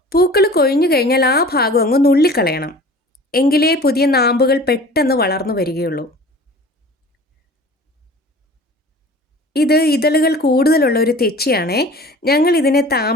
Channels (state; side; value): normal; both; correlation 0.43